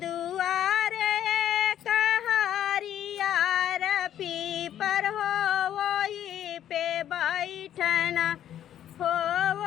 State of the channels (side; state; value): right; quieter; 10.9 dB